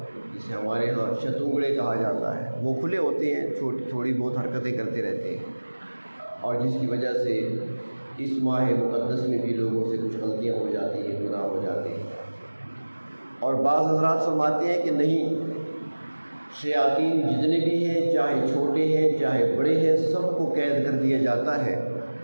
جسے ہمارے ہاں شتونگڑے کہا جاتا ہے، وہ کھلے ہوتے ہیں، تھوڑی بہت حرکتیں کرتے رہتے ہیں، اور جس کی وجہ سے اس ماہ مقدس میں بھی لوگوں سے کچھ غلطیاں ہو جاتی ہیں، گناہ ہو جاتے ہیں. اور بعض حضرات فرماتے ہیں کہ نہیں، شیاطین جتنے بھی ہیں، چاہے چھوٹے ہیں چاہے بڑے ہیں، سب کو قید کر دیا جاتا ہے.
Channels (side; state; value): both; inverted; correlation -1.00